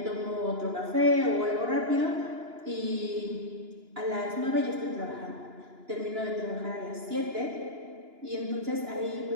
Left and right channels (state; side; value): late; left; 2.9 ms